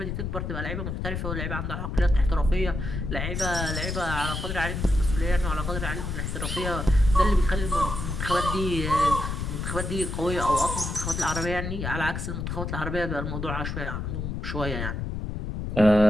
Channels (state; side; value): noise; left; rumble, 4 dB below the sound